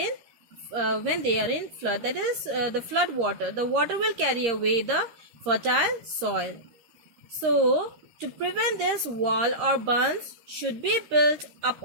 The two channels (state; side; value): late; left; 13 ms